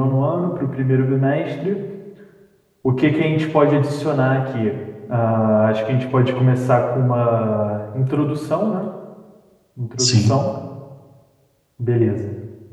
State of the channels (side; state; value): both; identical; correlation 1.00